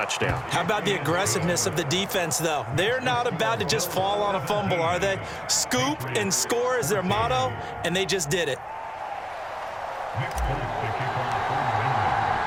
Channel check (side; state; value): both; identical; correlation 1.00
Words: How about the aggressiveness of the defense, though? They're not about to just fall on a fumble, are they? Scoop and score is their motto, and they just did it.